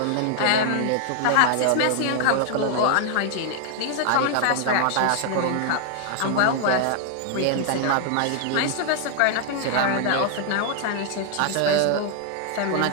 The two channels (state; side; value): different; both; correlation 0.00